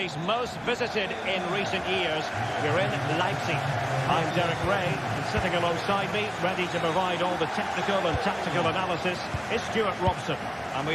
most visited in recent years. We're in Leipzig. I'm Derek Ray, and sitting alongside me, ready to provide all the technical and tactical analysis, is Stuart Robson. And we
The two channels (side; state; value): both; identical; correlation 1.00